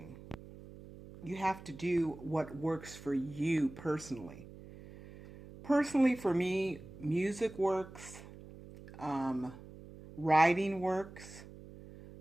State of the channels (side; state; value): right; noise; hum, 17 dB below the sound